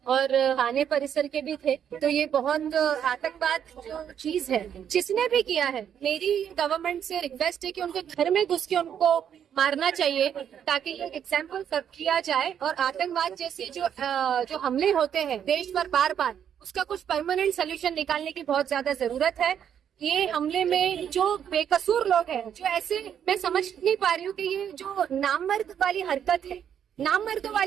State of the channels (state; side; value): quieter; left; 8.9 dB